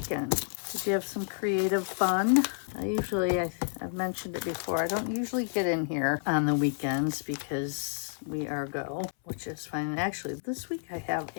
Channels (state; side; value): silent; right; 58 dB below the other